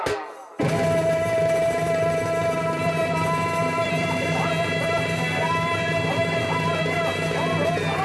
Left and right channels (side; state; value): both; identical; correlation 1.00